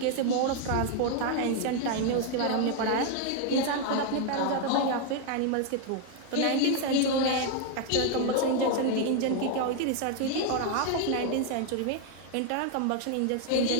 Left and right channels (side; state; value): both; different; correlation 0.00